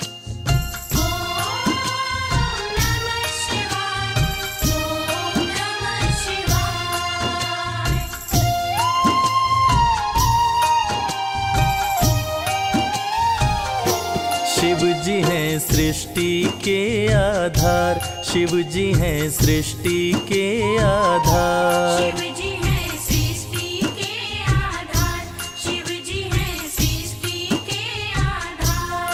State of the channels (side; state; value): both; identical; correlation 1.00